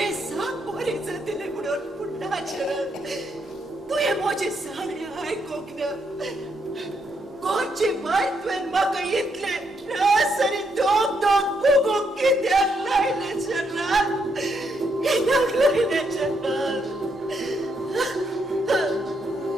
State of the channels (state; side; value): normal; both; correlation 0.77